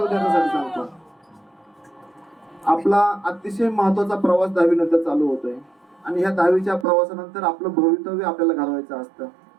विद्यार्थ्यांसाठी सांगतो, आपला अतिशय महत्वाचा प्रवास 10वी नंतर चालू होतोय आणि ह्या 10वीच्या प्रवासानंतर आपलं भवितव्य आपल्याला घडवायचं असतं.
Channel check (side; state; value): left; drops out; at 6.9 s